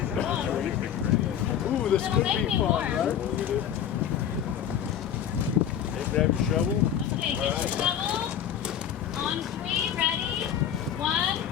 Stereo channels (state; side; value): quieter; right; 9.4 dB